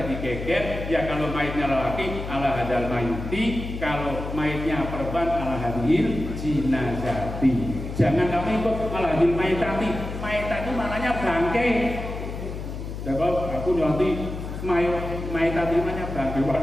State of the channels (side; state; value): left; noise; hum, 7 dB below the sound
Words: digeger ya, kalau maitnya lelaki ala hadal maiti, kalau maitnya perempuan ala hadhil jinazati. Jangan kamu ikut ala hadhil maitati. Maitati itu maknanya bangkai. Jadi aku nanti maitati namanya bangkai